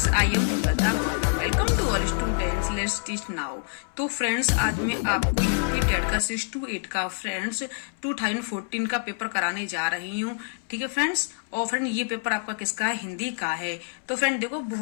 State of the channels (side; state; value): right; silent; 61 dB below the other